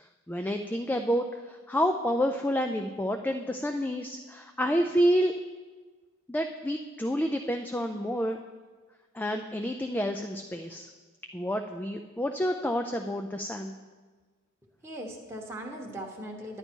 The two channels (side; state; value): both; normal; correlation 0.81